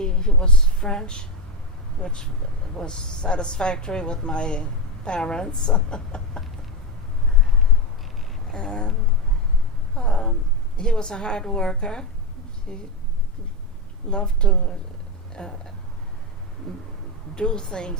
was French, which was satisfactory with my parents. And he was a hard worker. He loved to do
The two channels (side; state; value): both; normal; correlation 0.12